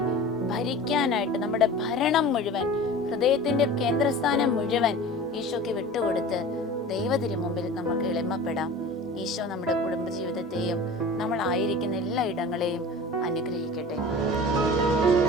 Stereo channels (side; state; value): both; normal; correlation 0.37